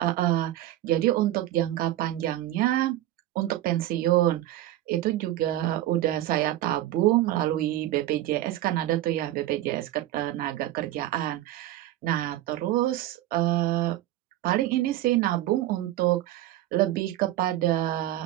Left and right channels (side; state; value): left; quieter; 14.2 dB